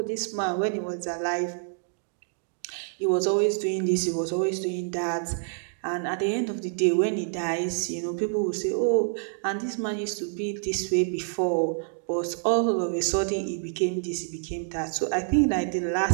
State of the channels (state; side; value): silent; left; digital silence